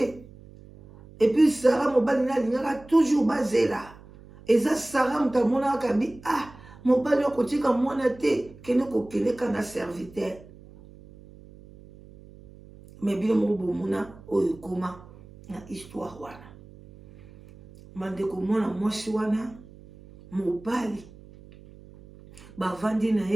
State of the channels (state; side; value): noise; right; hum, 21 dB below the sound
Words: Et puis Sarah mobali na lingaka toujours bazela. Eza Sarah mutamona kabi ah mobali okotika mwana te kene kokeleka na serviteur. Mais bino mobo mona oyo koma na histoire wana. Mandeko mwana mwasi wana mobali bavandi na